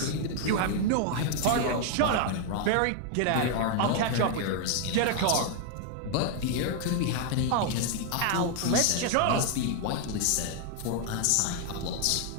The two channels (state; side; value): different; both; correlation 0.00